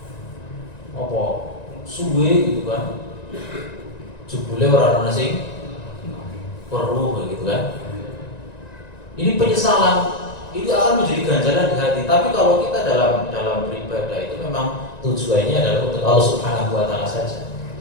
apa suwe gitu kan. Jebule ora ana sing perlu gitu kan. Ini penyesalan, ini akan menjadi ganjalan di hati. Tapi kalau kita dalam beribadah itu memang tujuannya adalah untuk Allah Subhanahu wa taala saja.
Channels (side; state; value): right; late; 1.9 ms